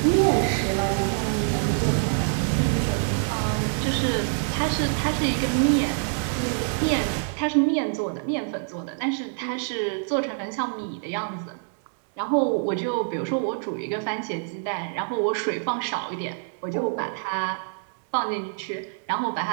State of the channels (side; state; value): left; silent; digital silence